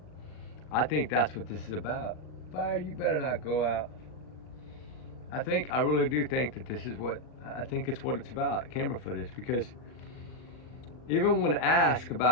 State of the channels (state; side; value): late; right; 39 ms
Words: I think that's what this is about. Fire, you better not go out. I really do think that this is what, I think it's what it's about, camera footage, because, even when asked